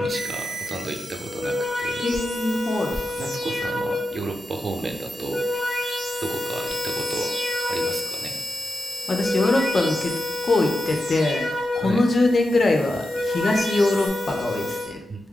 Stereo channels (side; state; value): both; normal; correlation 0.90